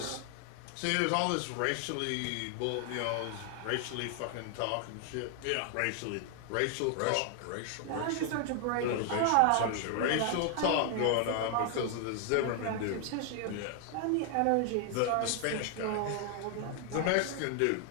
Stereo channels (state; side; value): different; both; correlation 0.00